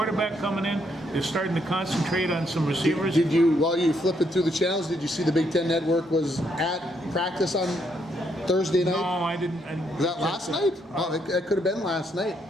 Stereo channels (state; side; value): normal; both; correlation 0.74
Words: coming in. They're starting to concentrate on some receivers. Did you, while you flipping through the channels, did you see the Big Ten Network was at practice on Thursday night? No, I didn't. Was that last night? Oh, it could have been last night.